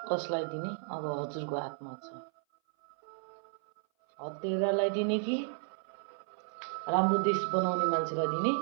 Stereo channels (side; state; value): left; silent; 56 dB below the other